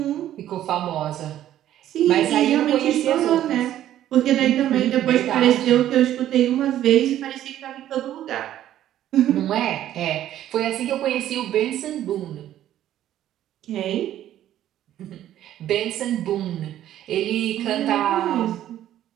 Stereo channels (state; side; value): quieter; left; 12.2 dB